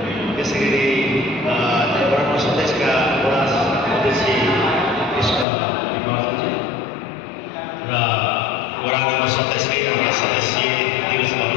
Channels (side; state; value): right; drops out; at 5.5 s